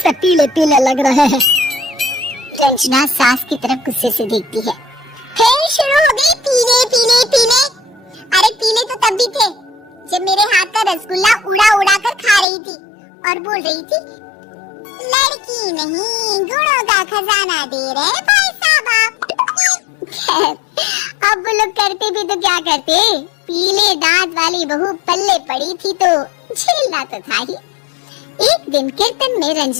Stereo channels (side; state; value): right; drops out; at 12.5 s